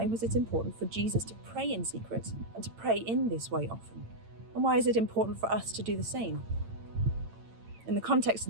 was it important for Jesus to pray in secret and to pray in this way often? And why is it important for us to do the same? In the context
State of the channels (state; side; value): late; left; 8.9 ms